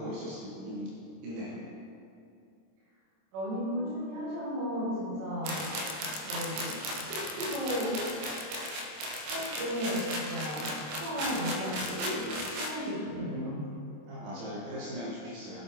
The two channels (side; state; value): left; late; 26 ms